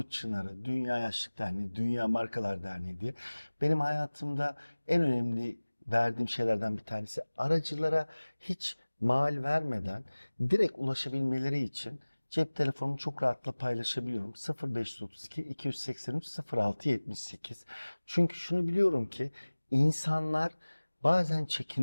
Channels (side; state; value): both; inverted; correlation -1.00